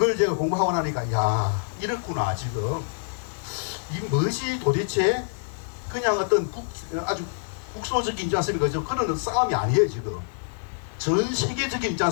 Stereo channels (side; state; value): right; silent; 61 dB below the other